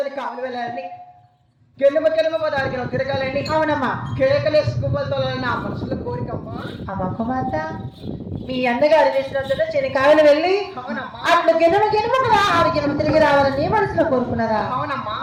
కావాలి వెళ్ళాలని కెలుమ పదానికి తిరగాలని. అవునమ్మా. కేకలేసి గువ్వలతోలని నా మనసులో కోరికమ్మా. అమ్మ కుమార్తె మీ అన్నగారు వేసినందులో చెనికాయలు వెళ్ళి అట్లు గిన్నెమ కదా 6 గిన్నెలు తిరిగి రావాలని నీ మనసులో కోరుకున్నారా? అవునమ్మా.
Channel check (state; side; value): identical; both; correlation 1.00